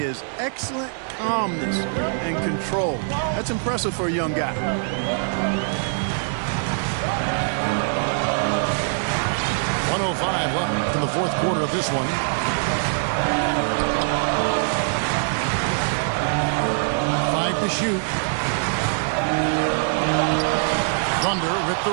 Excellent calmness and control. That's impressive for a young guy. fourth quarter of this one. Five to shoot. Thunder with the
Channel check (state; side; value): silent; left; 63 dB below the other